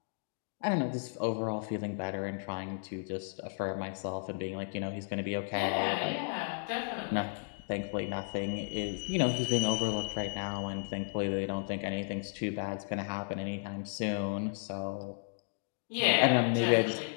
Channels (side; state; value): right; silent; digital silence